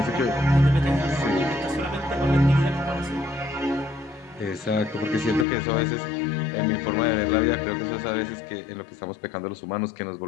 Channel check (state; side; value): drops out; right; at 5.5 s